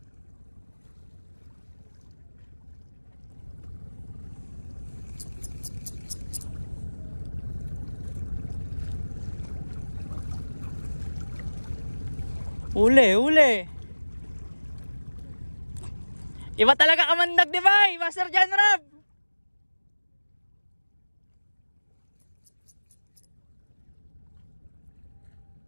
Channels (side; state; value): both; inverted; correlation -1.00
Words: Uli. Iba talaga kamandag, di ba, Master John Rob?